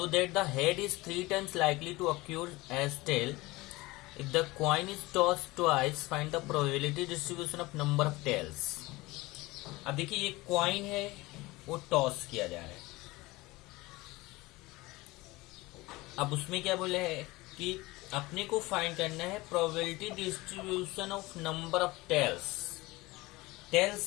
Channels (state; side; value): quieter; right; 21.1 dB